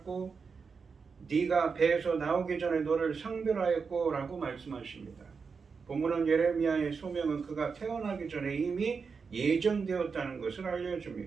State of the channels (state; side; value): quieter; left; 5.3 dB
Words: 네가 배에서 나오기 전에 너를 성별하였고 라고 말씀하십니다. 본문은 예레미야의 소명은 그가 태어나기 전에 이미 예정되었다는 것을